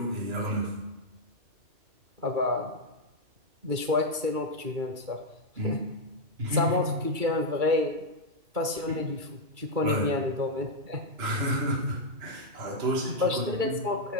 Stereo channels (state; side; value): late; left; 2.3 ms